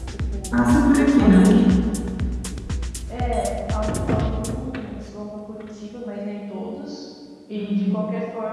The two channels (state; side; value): identical; both; correlation 1.00